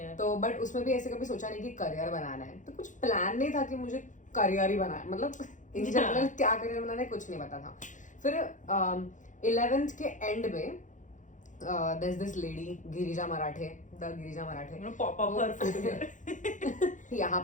तो बट उसमें भी ऐसे कभी सोचा नहीं कि करियर बनाना है. तो कुछ प्लान नहीं था कि मुझे करियर ही बनाना है. मतलब इन जनरल क्या करियर बनाना है कुछ नहीं पता था. फिर 11th के एंड में there's this lady Girija Marathe, the Girija Marathe. You know, pop up her food here. यहाँ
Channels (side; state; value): right; late; 0.37 ms